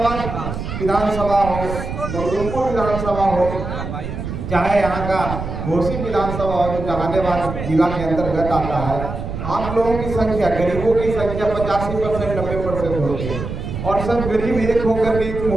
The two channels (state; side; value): noise; right; rumble, 6 dB below the sound